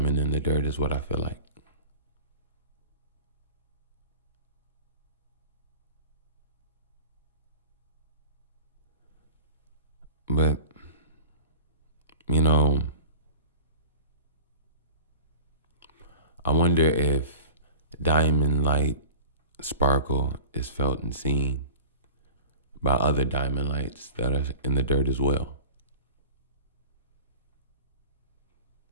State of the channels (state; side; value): inverted; both; correlation -0.38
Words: in the dirt is what I feel like. But, I wonder if diamond light sparkle is felt and seen by other diamond lights that are in the dirt as well.